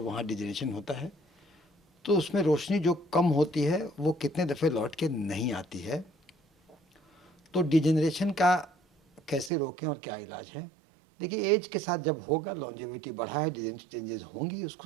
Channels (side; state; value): left; drops out; at 9.5 s